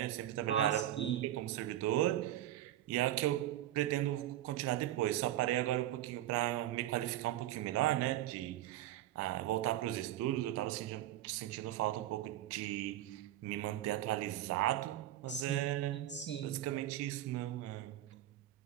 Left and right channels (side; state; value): left; quieter; 13.5 dB